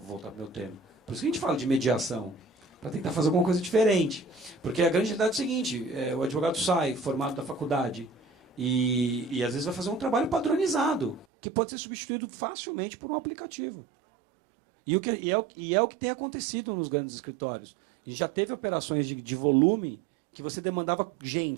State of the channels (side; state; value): left; drops out; at 11.2 s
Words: para o meu tema. Por isso que a gente fala de mediação, para tentar fazer alguma coisa diferente. Porque a grande realidade é o seguinte, o advogado sai formado da faculdade e às vezes vai fazer um trabalho padronizado, que pode ser substituído facilmente por um aplicativo. E é o que tem acontecido nos grandes escritórios. E já teve operações de volume que você demandava